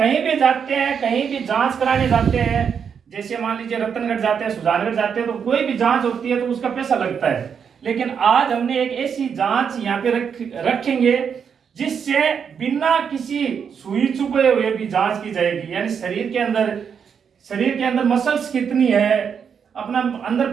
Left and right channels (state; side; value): quieter; left; 7.0 dB